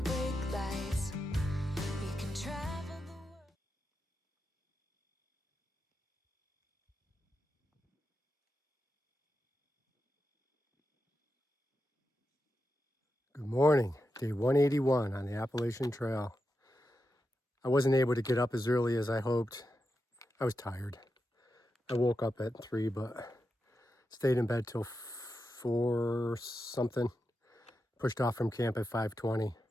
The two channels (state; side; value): normal; both; correlation 0.88